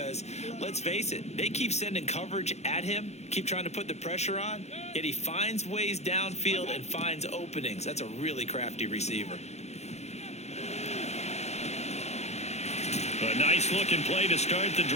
let's face it, they keep sending coverage at him, keep trying to put the pressure on, yet he finds ways downfield and finds openings. That's a really crafty receiver. A nice-looking play to start the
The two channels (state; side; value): late; right; 0.32 ms